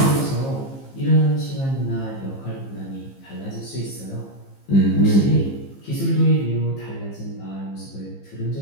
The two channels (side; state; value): right; late; 15 ms